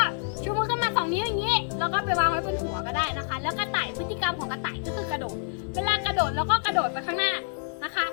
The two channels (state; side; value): silent; right; digital silence